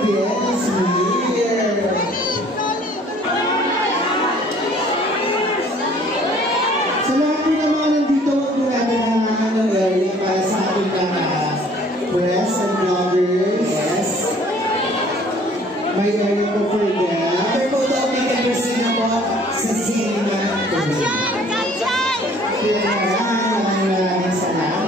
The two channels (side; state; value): both; normal; correlation 0.55